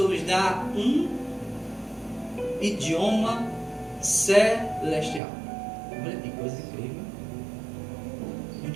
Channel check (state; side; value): drops out; left; at 5.2 s